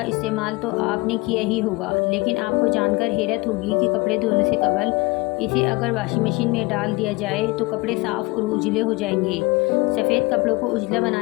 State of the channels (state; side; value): quieter; right; 24.2 dB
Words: इस्तेमाल तो आपने किया ही होगा, लेकिन आपको जानकर हैरत होगी कि कपड़े धोने से कबल इसे अगर वॉशिंग मशीन में डाल दिया जाए तो कपड़े साफ़ और उजले हो जाएंगे। सफ़ेद कपड़ों को उजला